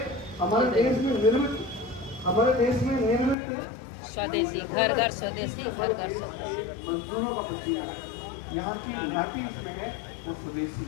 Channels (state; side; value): drops out; right; at 3.4 s